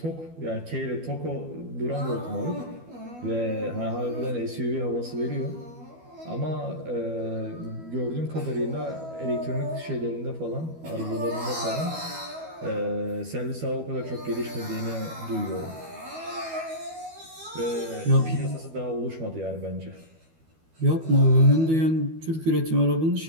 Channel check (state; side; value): late; left; 12 ms